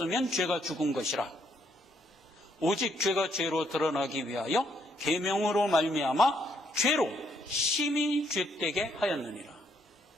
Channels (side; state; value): both; normal; correlation 0.72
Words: 죄가 죽은 것이라. 오직 죄가 죄로 드러나기 위하여 계명으로 말미암아 죄로 심히 죄되게 하였느니라.